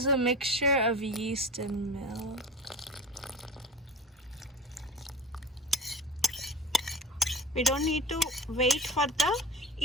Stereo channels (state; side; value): normal; both; correlation 0.35